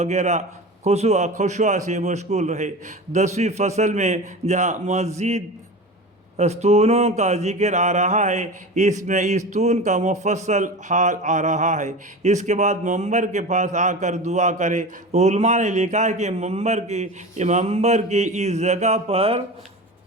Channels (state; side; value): normal; both; correlation 0.30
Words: خشوع سے مشغول رہے. 10ویں فصل میں جہاں مزید ستونوں کا ذکر آ رہا ہے، اس میں ستون کا مفصل حال آ رہا ہے. اس کے بعد منبر کے پاس آ کر دعا کرے. علماء نے لکھا ہے کہ منبر کی اس جگہ پر